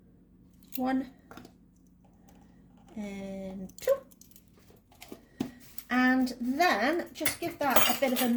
1 and 2. And then just give that a bit of a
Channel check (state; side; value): identical; both; correlation 1.00